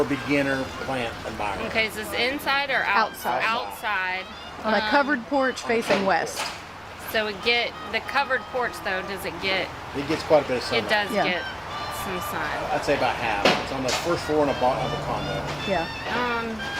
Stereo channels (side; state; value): both; identical; correlation 1.00